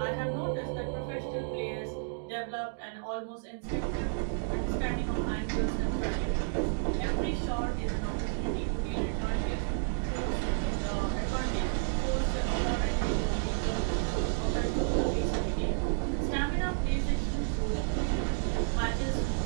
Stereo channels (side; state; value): left; silent; digital silence